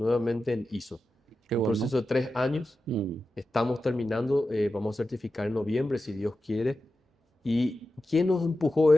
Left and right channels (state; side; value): normal; both; correlation 0.92